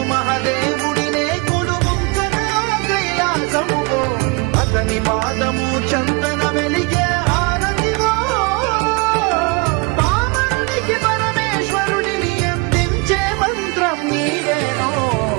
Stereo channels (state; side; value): quieter; left; 28.6 dB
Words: మహాదేవుడినే కొలుముంకనలో కైలాసమువో అతని పాదము చందన వెలిగే హారతివో పామరునికి పరమేశ్వరుడిని అందించే మంత్రం నీవేనో